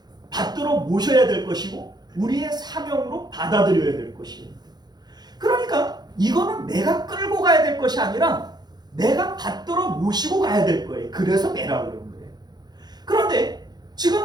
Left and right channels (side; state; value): left; late; 0.20 ms